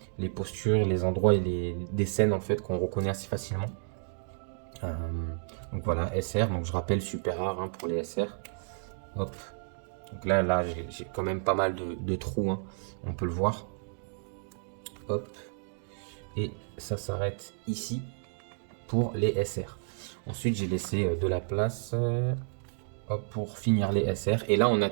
postures, les endroits et des scènes en fait qu'on reconnaît assez facilement. Donc voilà, SR, donc je rappelle super rare hein, pour les SR. Hop. Donc là j'ai quand même pas mal de trous, hein, on peut le voir. Hop. Et ça s'arrête ici pour les SR. Ensuite j'ai laissé de la place hop, pour finir les SR. Et là on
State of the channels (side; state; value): left; silent; digital silence